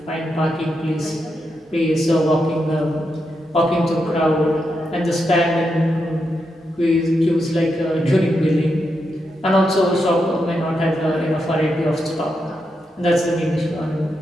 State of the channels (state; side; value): normal; both; correlation 0.84